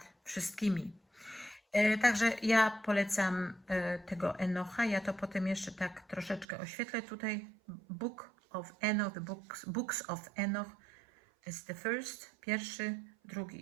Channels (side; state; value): left; drops out; at 6.5 s